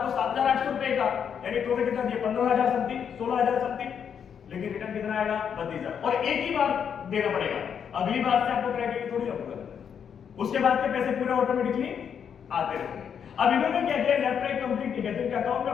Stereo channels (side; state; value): right; quieter; 7.7 dB